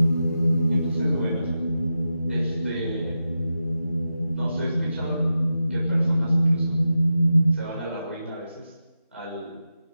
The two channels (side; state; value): both; inverted; correlation -0.90